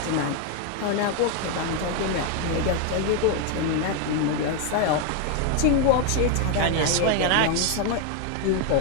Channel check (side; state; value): both; different; correlation 0.01